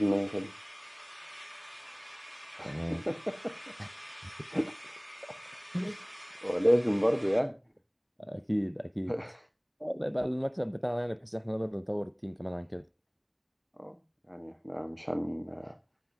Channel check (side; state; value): both; identical; correlation 1.00